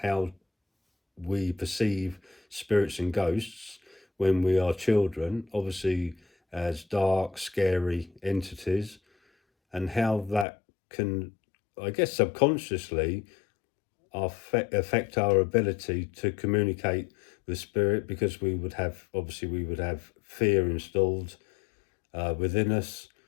how we perceive spirits and ghosts when we are children, obviously as dark, scary entities, and how that can, I guess, subconsciously affect our ability to communicate with spirit, because we would have fear installed within us,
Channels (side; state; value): right; drops out; at 10.5 s